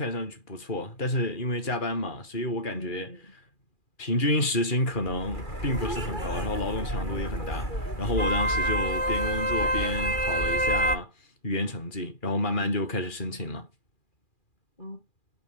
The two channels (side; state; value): right; late; 2.4 ms